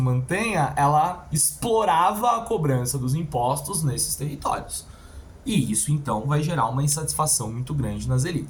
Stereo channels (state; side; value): identical; both; correlation 1.00